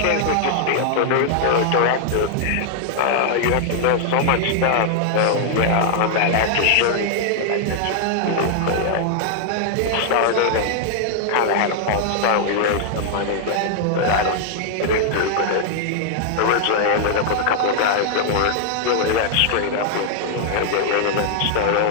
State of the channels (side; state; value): both; different; correlation 0.00